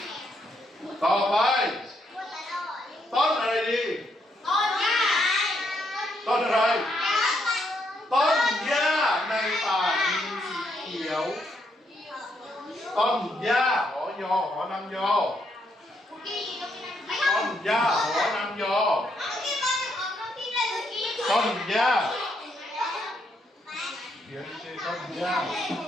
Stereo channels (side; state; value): both; normal; correlation 0.76